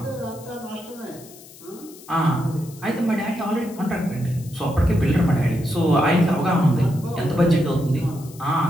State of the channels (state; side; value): noise; left; hiss, 20 dB below the sound